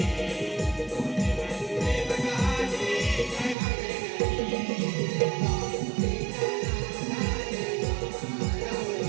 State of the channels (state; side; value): drops out; left; at 3.6 s